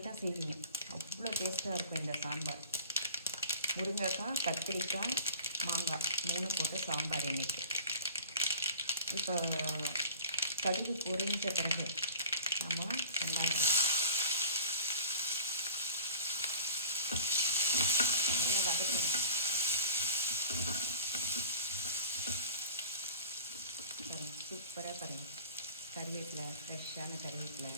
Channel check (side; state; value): both; inverted; correlation -0.41